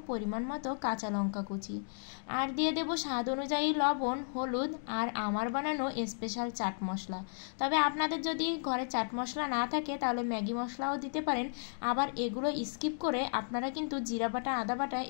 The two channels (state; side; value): silent; right; digital silence